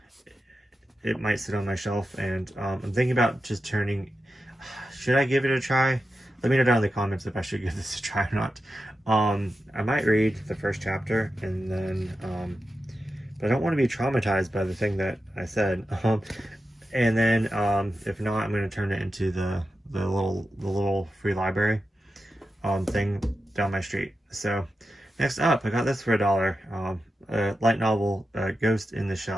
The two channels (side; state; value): both; normal; correlation 0.90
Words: it might sit on my shelf, and I'm thinking about just should I give it a try? Let me know down in the comments if I should give this a try or not. I might read the first chapter, and then, but I don't want to be traumatized by the thing that I said. And then, if not, I'm going to turn it into the little free library, thing down my street. So, next up, I got this for $1. A light novel, Ghost in the